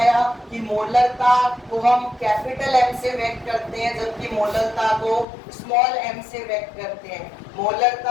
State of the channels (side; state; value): right; drops out; at 5.2 s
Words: कि मोलरता को हम कैपिटल एम से व्यक्त करते हैं, जबकि मोललता को स्मॉल एम से व्यक्त करते हैं।